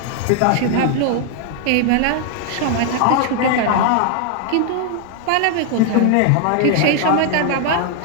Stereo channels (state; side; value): different; both; correlation 0.00